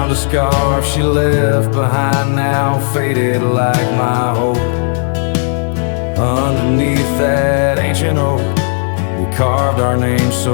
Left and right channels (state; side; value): silent; right; digital silence